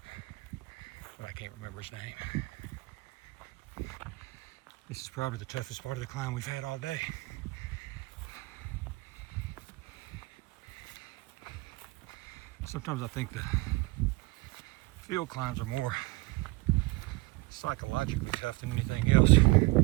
but I can't remember his name. This is probably the toughest part of the climb we've had all day. Sometimes I think the field climbs are more psychologically tough than anything else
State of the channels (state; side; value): quieter; left; 22.8 dB